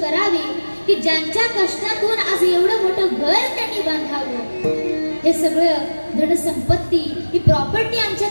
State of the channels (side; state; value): both; inverted; correlation -1.00